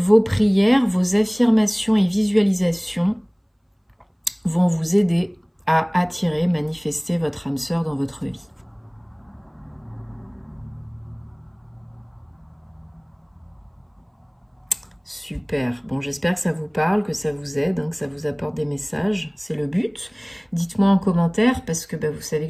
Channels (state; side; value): identical; both; correlation 1.00